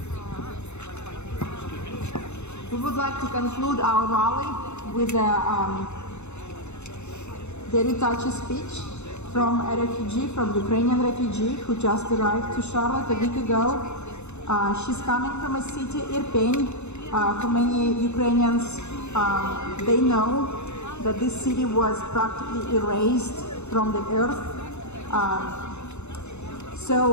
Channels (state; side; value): late; right; 0.82 ms